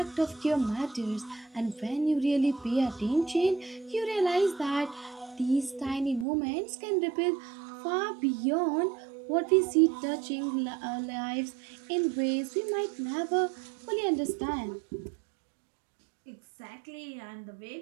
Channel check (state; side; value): drops out; left; at 6.2 s